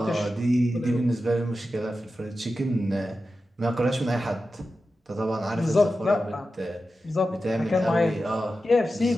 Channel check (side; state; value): both; normal; correlation 0.92